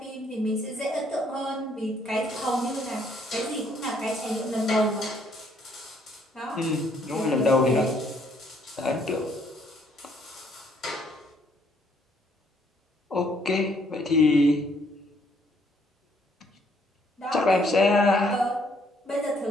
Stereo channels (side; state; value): both; normal; correlation 0.67